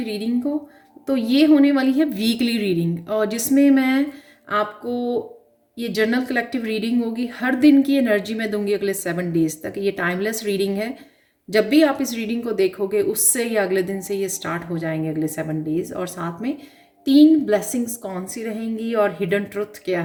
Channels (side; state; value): both; identical; correlation 1.00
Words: रीडिंग को। तो ये होने वाली है वीकली रीडिंग, और जिसमें मैं आपको ये जर्नल कलेक्टिव रीडिंग होगी। हर दिन की एनर्जी मैं दूंगी अगले 7 डेज तक। ये टाइमलेस रीडिंग है। जब भी आप इस रीडिंग को देखोगे, उससे या अगले दिन से ये स्टार्ट हो जाएंगे अगले 7 डेज। और साथ में 3 ब्लेसिंग्स कौन सी रहेंगी और हिडन ट्रुथ क्या